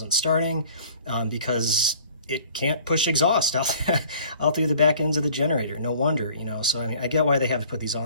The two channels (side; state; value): both; inverted; correlation -0.51